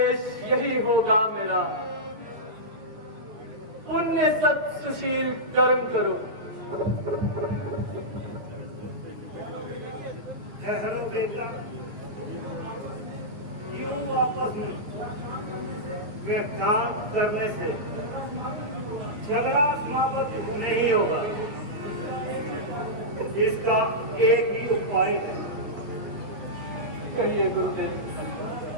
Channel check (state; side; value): late; left; 8.8 ms